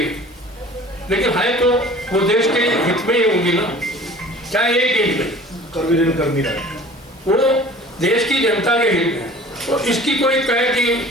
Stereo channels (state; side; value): normal; both; correlation 0.45